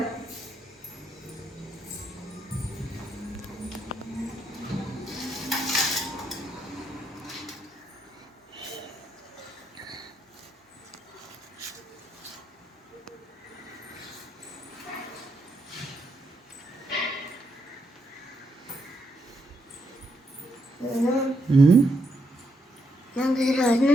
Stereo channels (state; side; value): normal; both; correlation 0.78